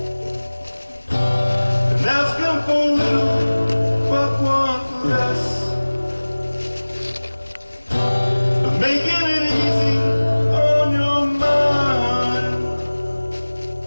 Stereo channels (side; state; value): both; inverted; correlation -1.00